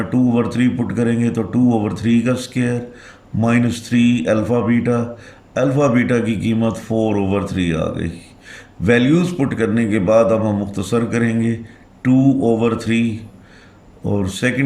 2/3 पुट करेंगे तो 2/3 का square minus 3 alpha beta. Alpha beta की कीमत 4/3 आ गई। वैल्यूज़ पुट करने के बाद अब हम मुख्तसर करेंगे 2/3 और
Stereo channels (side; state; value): both; identical; correlation 1.00